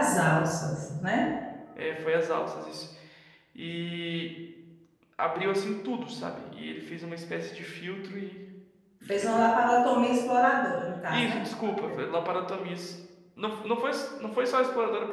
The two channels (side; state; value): both; identical; correlation 1.00